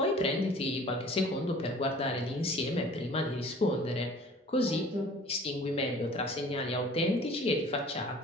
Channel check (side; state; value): both; normal; correlation 0.48